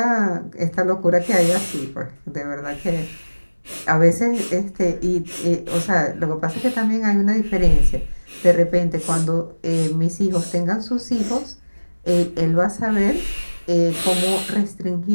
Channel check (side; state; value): both; inverted; correlation -1.00